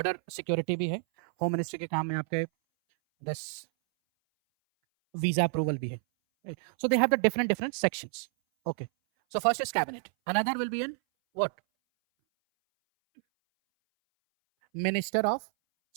सिक्योरिटी भी है, होम मिनिस्ट्री के काम में आपके दिस वीजा अप्रूवल भी है. So they have the different sections. Okay. So first is cabinet. Another will be in what? Minister of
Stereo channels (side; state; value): left; silent; 58 dB below the other